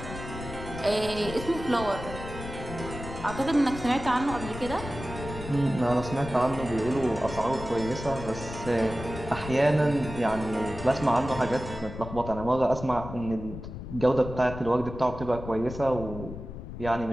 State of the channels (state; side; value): noise; left; rumble, 10 dB below the sound